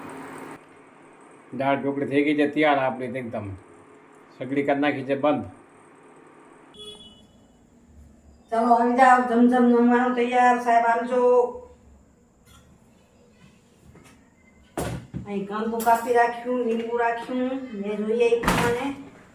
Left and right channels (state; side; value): identical; both; correlation 1.00